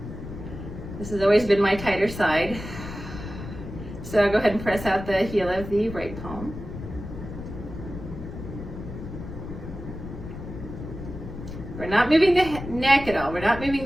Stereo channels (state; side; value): noise; left; rumble, 10 dB below the sound